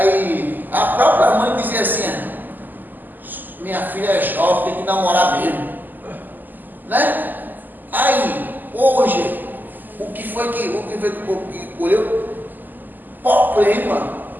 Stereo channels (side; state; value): left; late; 0.087 ms